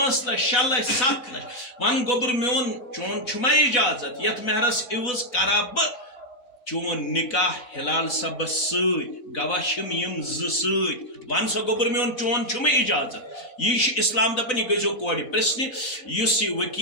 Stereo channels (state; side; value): late; right; 4.0 ms